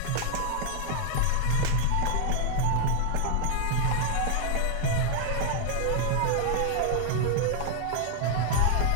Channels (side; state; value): both; different; correlation 0.00